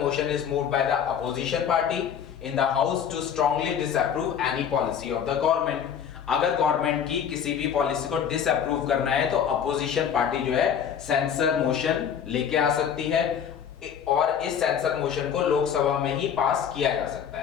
motion is moved by the opposition party in the house to strongly disapprove any policy of the government। अगर गवर्नमेंट की किसी भी पॉलिसी को डिसअप्रूव करना है तो अपोजिशन पार्टी जो है सेंसर मोशन लेके आ सकती है, और इस सेंसर मोशन को लोकसभा में ही पास किया जा सकता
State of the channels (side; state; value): right; quieter; 8.2 dB